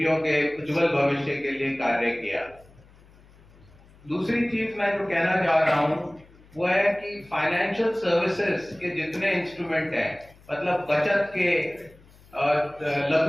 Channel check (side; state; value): left; noise; hum, 26 dB below the sound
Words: के उज्जवल भविष्य के लिए कार्य किया। दूसरी चीज मैं जो कहना चाह रहा हूं वो है कि फाइनेंशियल सर्विसेज के जितने इंस्ट्रूमेंट हैं, मतलब बचत के